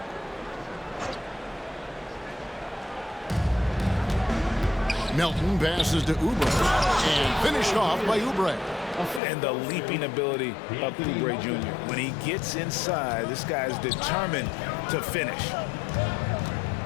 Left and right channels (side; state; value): right; drops out; at 9.2 s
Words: Melton passes to Oubre. And finished off by Oubre. And the leaping ability of Oubre Jr. When he gets inside, this guy's determined to finish.